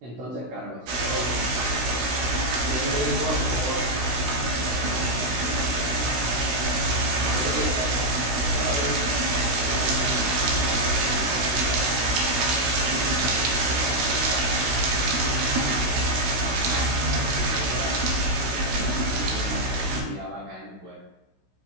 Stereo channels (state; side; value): late; left; 16 ms